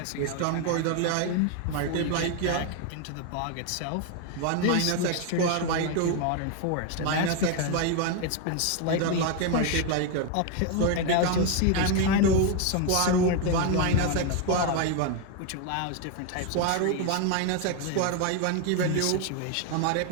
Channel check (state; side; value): different; both; correlation 0.01